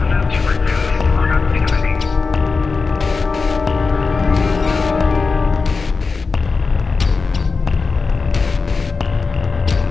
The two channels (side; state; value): right; quieter; 4.4 dB